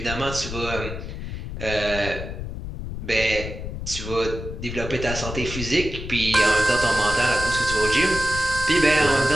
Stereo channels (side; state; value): left; noise; rumble, 7 dB below the sound